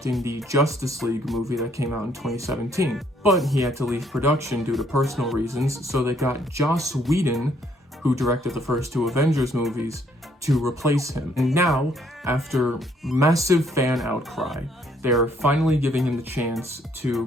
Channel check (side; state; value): both; normal; correlation 0.67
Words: the Justice League movie that came out in 2017. But he had to leave production due to personal reasons, so they got Joss Whedon, who directed the first two Avengers movies, to replace him. And now, after massive fan outcry, they're finally giving him the chance to